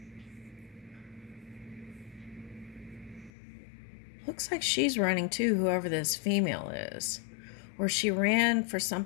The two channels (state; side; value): drops out; right; at 3.3 s